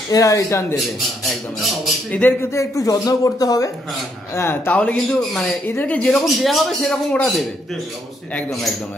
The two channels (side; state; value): both; normal; correlation 0.74